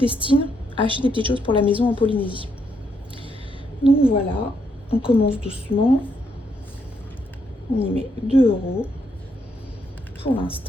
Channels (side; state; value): both; normal; correlation 0.76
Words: à acheter des petites choses pour la maison en Polynésie. Donc voilà, on commence doucement. On y met 2 € pour